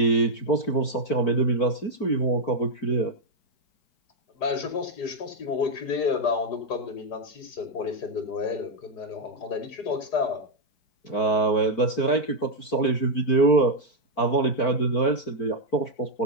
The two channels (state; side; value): late; right; 4.5 ms